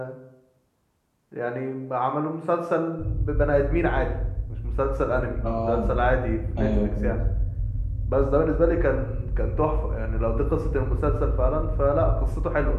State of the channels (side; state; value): both; identical; correlation 1.00